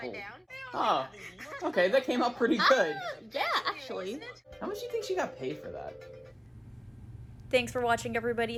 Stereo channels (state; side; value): identical; both; correlation 1.00